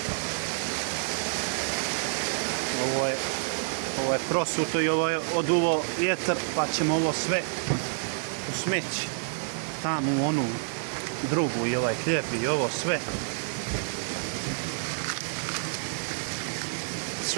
Ovo je prosuto i ovo je oduvo vjetar, pa ćemo ovo sve u smeći. Tamo u onu drugu i ovaj hljeb i ovo sve.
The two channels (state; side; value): silent; left; digital silence